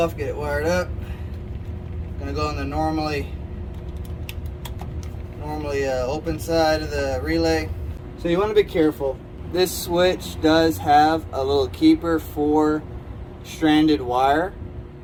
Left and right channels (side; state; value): both; identical; correlation 1.00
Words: get it wired up. Gonna go on the normally open side of the relay. So you want to be careful. This switch does have a little keeper for stranded wire.